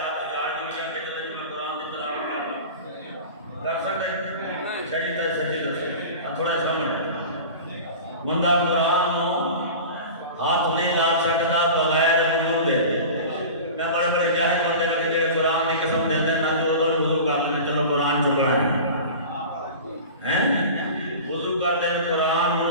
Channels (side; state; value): both; inverted; correlation -0.35